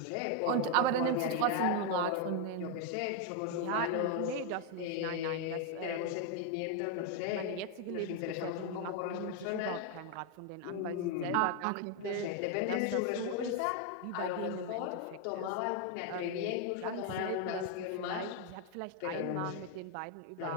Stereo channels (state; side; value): different; both; correlation 0.01